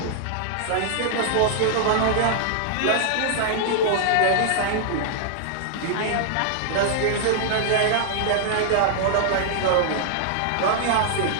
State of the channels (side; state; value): both; different; correlation -0.01